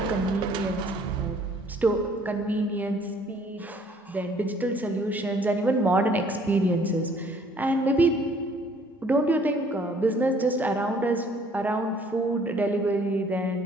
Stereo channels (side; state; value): both; normal; correlation 0.59